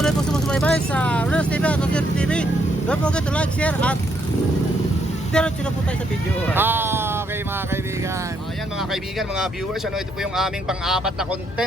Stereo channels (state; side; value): normal; both; correlation 0.74